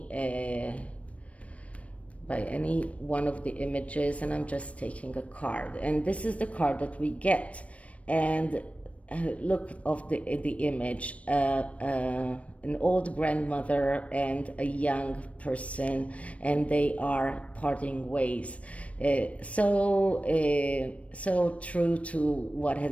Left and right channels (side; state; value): right; late; 0.064 ms